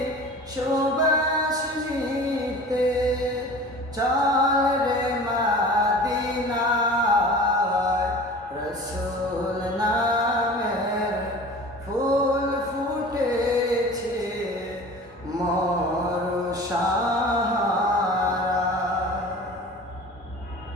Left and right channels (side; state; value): both; normal; correlation 0.39